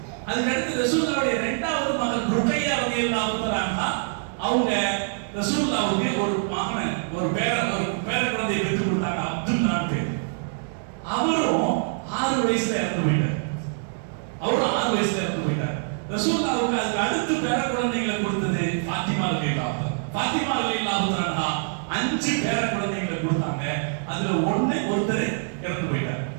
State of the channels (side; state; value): left; silent; digital silence